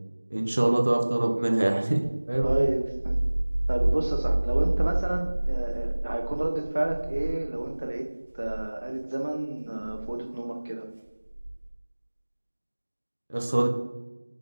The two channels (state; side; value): inverted; both; correlation -1.00